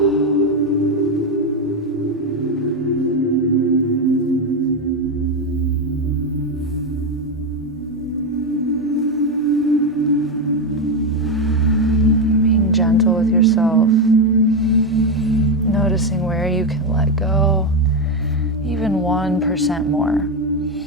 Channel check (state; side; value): normal; both; correlation 0.10